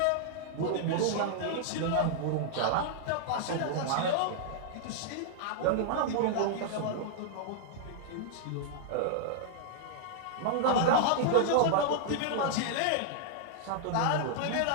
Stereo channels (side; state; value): both; different; correlation -0.01